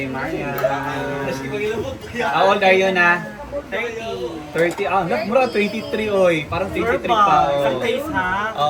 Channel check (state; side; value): identical; both; correlation 1.00